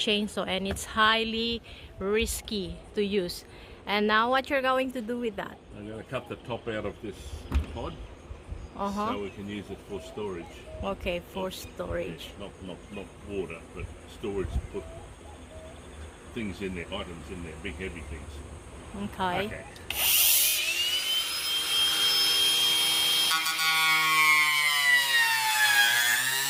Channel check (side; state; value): both; identical; correlation 1.00